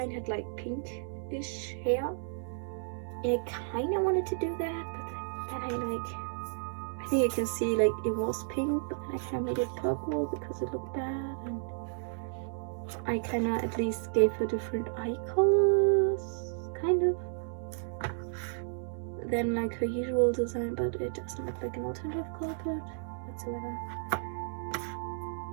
had like pinkish hair. And I kind of wanted to do that, but then I think you can see like it was pink, but then I kind of made it purple because it looked bad, and I kind of at least gave her different eye colors, kind of, than like her usual design, but it doesn't look like an alternative color palette whatsoever.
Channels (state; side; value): silent; left; digital silence